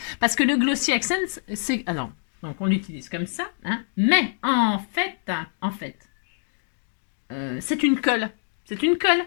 Parce que le Glossy Accent, c'est... Alors, donc on l'utilise comme ça, hein, mais en fait... c'est une colle. C'est une colle.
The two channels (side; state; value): right; silent; digital silence